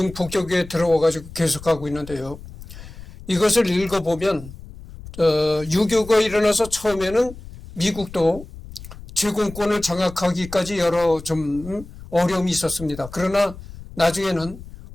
폭격에 들어와가지고 계속하고 있는데요. 이것을 읽어보면 6.25가 일어나서 처음에는 미국도 제공권을 장악하기까지 여러 좀 어려움이 있었습니다. 그러나 나중에는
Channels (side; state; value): left; noise; rumble, 15 dB below the sound